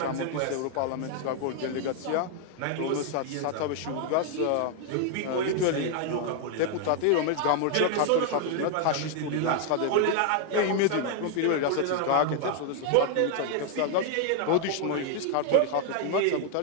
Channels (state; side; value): different; both; correlation 0.00